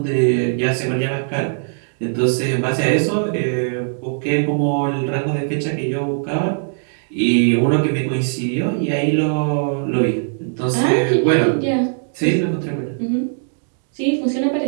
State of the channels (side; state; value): left; silent; digital silence